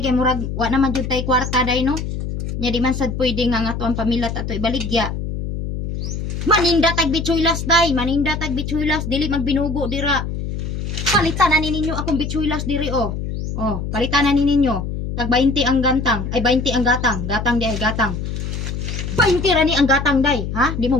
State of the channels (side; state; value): left; noise; hum, 4 dB below the sound